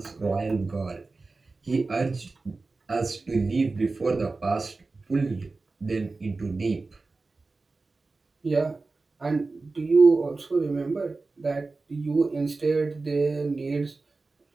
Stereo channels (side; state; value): left; quieter; 3.7 dB